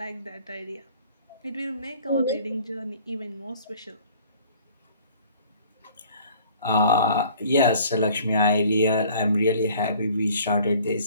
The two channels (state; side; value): inverted; both; correlation -0.52